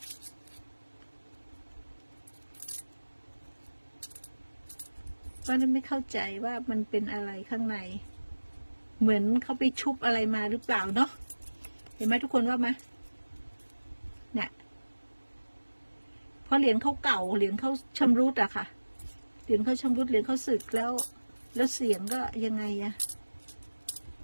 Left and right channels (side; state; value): both; inverted; correlation -1.00